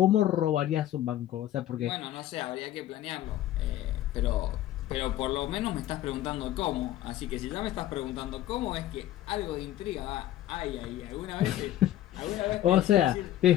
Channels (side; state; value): right; quieter; 13.3 dB